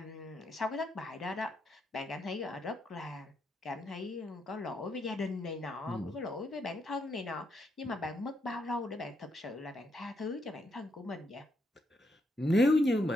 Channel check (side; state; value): both; normal; correlation 0.78